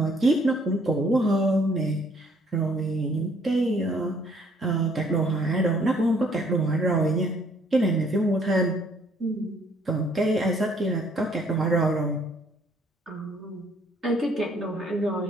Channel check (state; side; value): normal; both; correlation 0.63